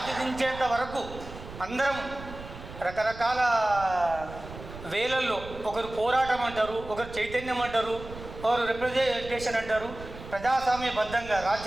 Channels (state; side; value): noise; right; rumble, 13 dB below the sound